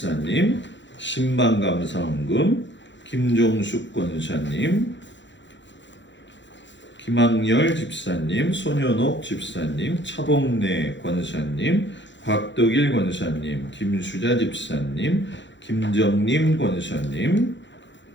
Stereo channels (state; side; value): late; right; 0.53 ms